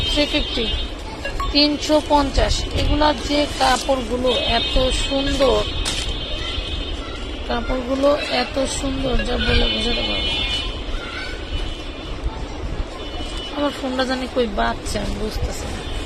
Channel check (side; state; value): both; identical; correlation 1.00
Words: 350, 350। এগুলা যে কাপড়গুলো এত সুন্দর, কাপড়গুলো এত সুন্দর যা বলে বোঝাতে পারবো। আমার ফোনটা জানি কই বাচ্চা, আমি বুঝতেছি না।